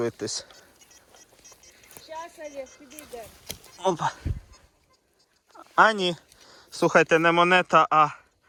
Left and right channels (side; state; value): both; identical; correlation 1.00